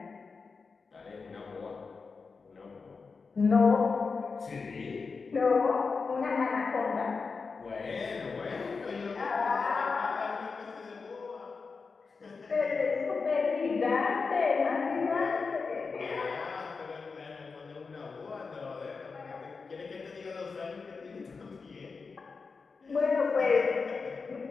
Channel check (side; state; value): right; quieter; 4.7 dB